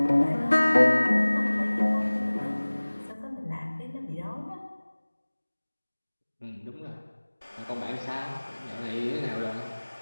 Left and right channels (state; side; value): inverted; both; correlation -1.00